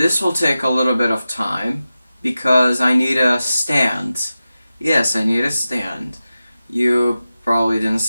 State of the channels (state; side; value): inverted; both; correlation -0.94